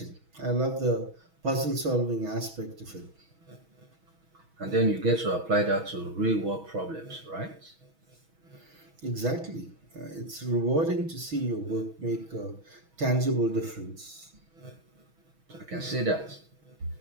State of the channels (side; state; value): left; late; 6.2 ms